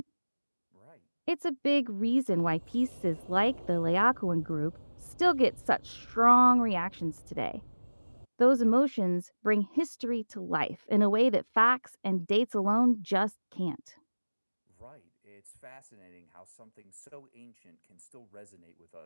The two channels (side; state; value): both; inverted; correlation -1.00